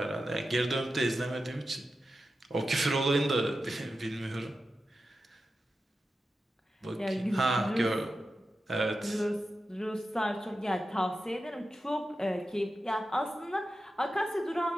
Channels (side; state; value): both; normal; correlation 0.91